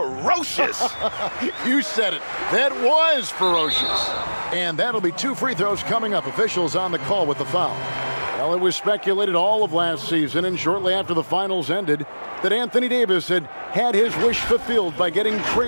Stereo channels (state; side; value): inverted; both; correlation -1.00